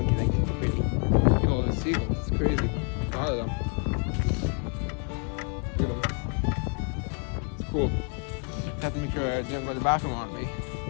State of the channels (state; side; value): quieter; right; 39.0 dB